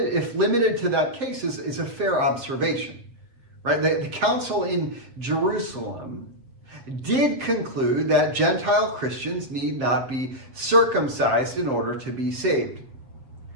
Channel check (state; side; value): late; left; 7.5 ms